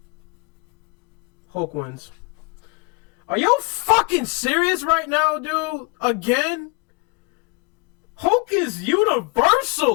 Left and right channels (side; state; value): right; quieter; 29.7 dB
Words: Hulk wins. Are you fucking serious right now, dude? Again? Hulk is